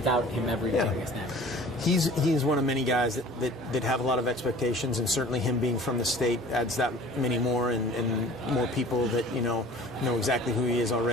him ever taking a snap? He's one of many guys that have a lot of expectations, and certainly him being from the state adds that many more, and more people that know exactly who he is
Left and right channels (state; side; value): normal; both; correlation 0.46